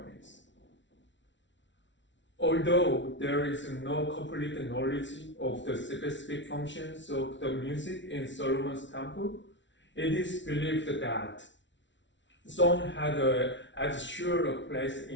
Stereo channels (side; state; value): right; late; 0.54 ms